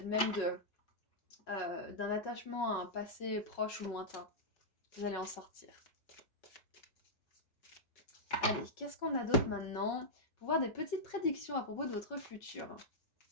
même d'un attachement à un passé proche ou lointain. Vous allez en sortir. Allez, qu'est-ce qu'on a d'autre maintenant? Pour voir des petites prédictions à propos de votre futur.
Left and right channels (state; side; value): late; right; 5.4 ms